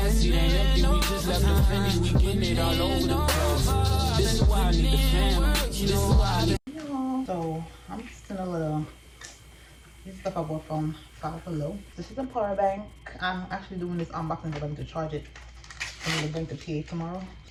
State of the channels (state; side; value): identical; both; correlation 1.00